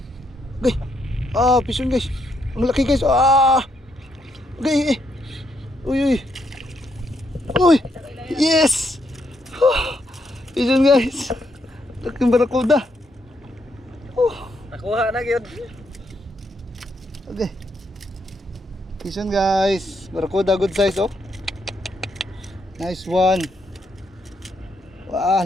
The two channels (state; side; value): normal; both; correlation 0.76